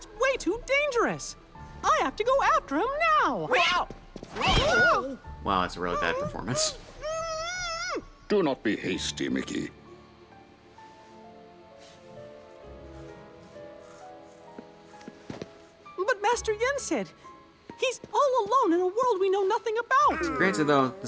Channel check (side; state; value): both; identical; correlation 1.00